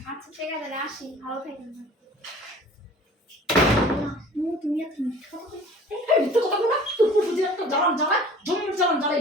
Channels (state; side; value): normal; both; correlation 0.47